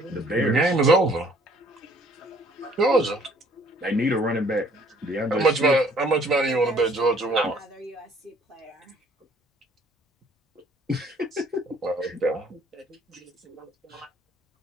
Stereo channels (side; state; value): both; normal; correlation 0.60